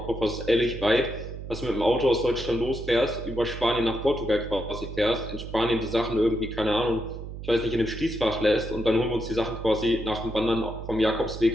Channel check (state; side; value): noise; right; hum, 10 dB below the sound